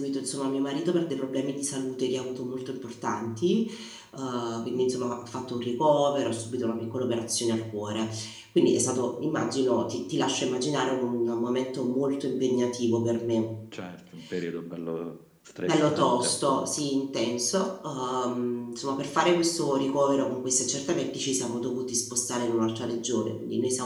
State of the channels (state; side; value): identical; both; correlation 1.00